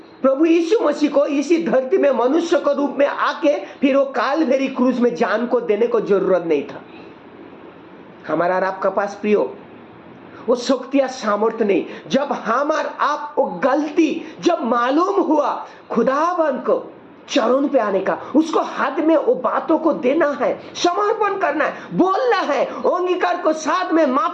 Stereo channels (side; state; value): both; identical; correlation 1.00